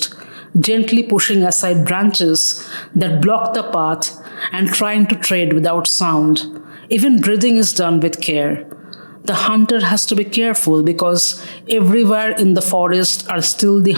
gently pushing aside branches that block the path and trying to tread without sound. Even breathing is done with care. The hunter has to be careful because everywhere in the forest are still the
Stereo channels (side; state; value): both; inverted; correlation -1.00